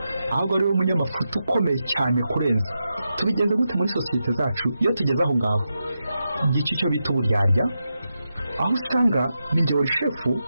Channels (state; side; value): inverted; both; correlation -0.88